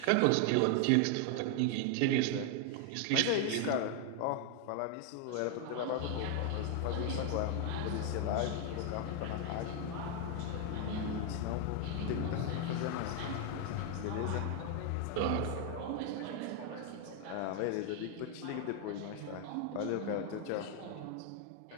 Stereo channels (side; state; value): both; different; correlation 0.01